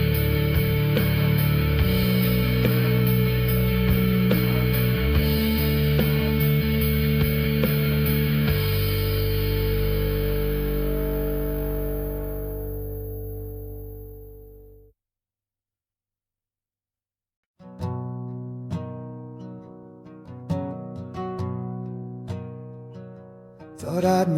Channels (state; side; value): identical; both; correlation 1.00